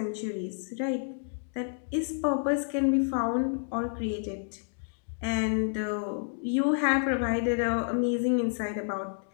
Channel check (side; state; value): right; silent; digital silence